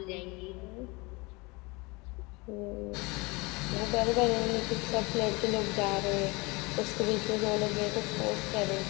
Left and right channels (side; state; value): right; quieter; 25.8 dB